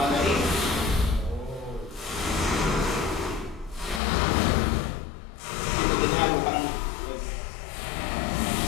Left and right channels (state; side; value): drops out; right; at 4.0 s